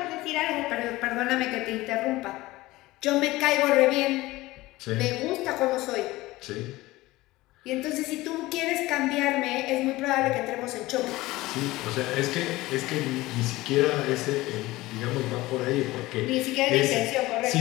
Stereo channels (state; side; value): quieter; right; 18.9 dB